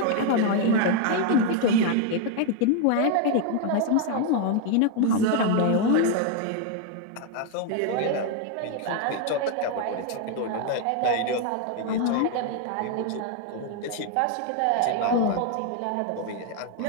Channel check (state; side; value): different; both; correlation 0.01